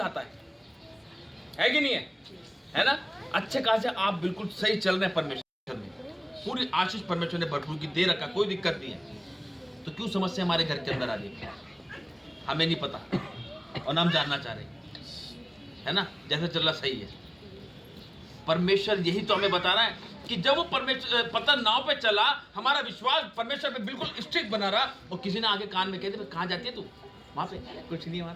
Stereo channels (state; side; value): identical; both; correlation 1.00